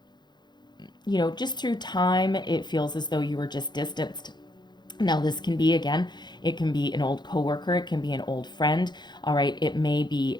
just through time, it feels as though you were just distanced. Now, this can be, again, it can be an old coworker, it can be an old friend, all right? It may be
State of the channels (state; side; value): late; right; 0.21 ms